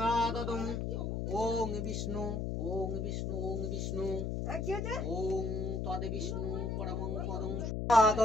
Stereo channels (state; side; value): noise; left; hum, 1 dB below the sound